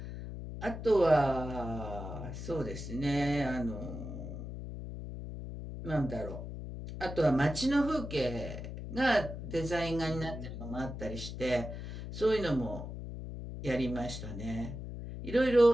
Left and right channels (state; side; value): noise; left; hum, 8 dB below the sound